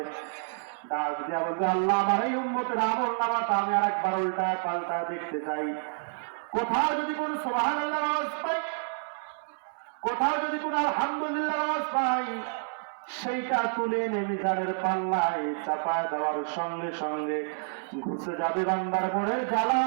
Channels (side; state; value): left; silent; 59 dB below the other